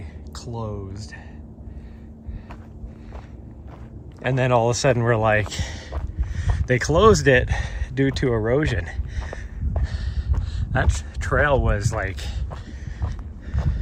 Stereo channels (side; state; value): both; identical; correlation 1.00